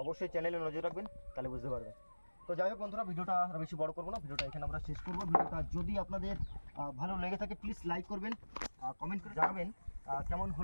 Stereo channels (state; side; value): inverted; both; correlation -1.00